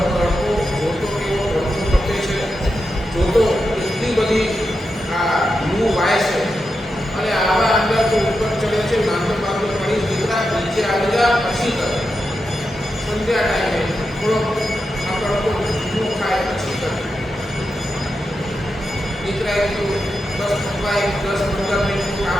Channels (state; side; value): normal; both; correlation 0.88